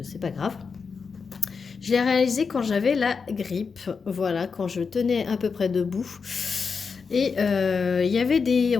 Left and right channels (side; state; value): right; quieter; 5.3 dB